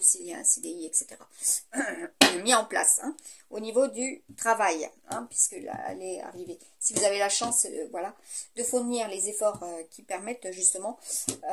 s'il y a un CDI, etc. mis en place. Hein, au niveau du travail, hein, puisque là, elle est arrivée. Si vous avez la chance, voilà, de fournir les efforts qui permettent justement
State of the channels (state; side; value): identical; both; correlation 1.00